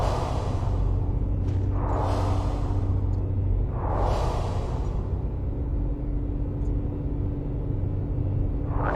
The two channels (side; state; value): both; identical; correlation 1.00